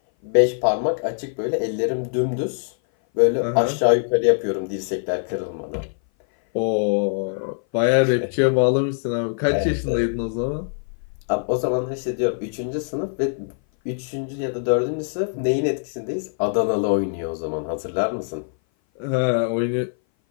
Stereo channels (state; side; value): silent; right; 58 dB below the other